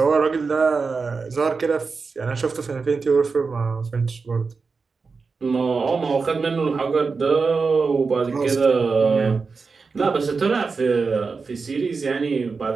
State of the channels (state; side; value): quieter; left; 4.7 dB